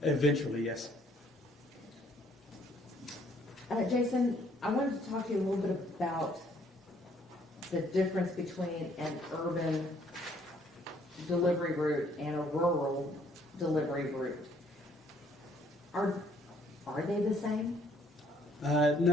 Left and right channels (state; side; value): normal; both; correlation 0.64